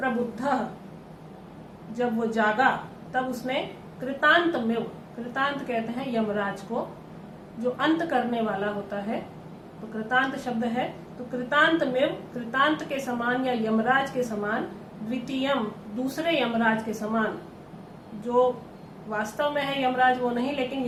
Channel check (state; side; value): identical; both; correlation 1.00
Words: जब वो जागा तब उसने कृतांतमेव, कृतांत कहते हैं यमराज को, जो अंत करने वाला होता है, तो कृतांत शब्द है। तो कृतांतमेव, कृतांत के समान या यमराज के समान, द्वितीयम, दूसरे यमराज के समान, जो वास्तव में है यमराज वो नहीं, लेकिन